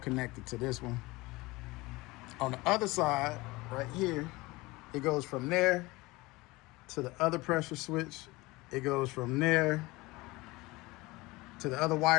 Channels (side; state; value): right; quieter; 21.8 dB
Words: to this one. On the other side, right here, it goes from there to the other pressure switch. It goes from there to the other